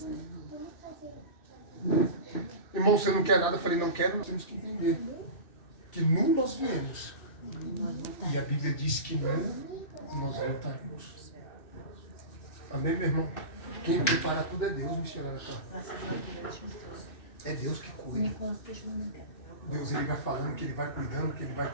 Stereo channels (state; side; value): late; right; 2.6 ms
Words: Irmão, você não quer nada? Eu falei, não quero, nós temos que entender que nu nós viemos. E a Bíblia diz que nu nós voltaremos. Amém, meu irmão? Quem prepara tudo é Deus, missionário. É Deus que cuida. Deus, ele vai falando que ele vai cuidando, que ele vai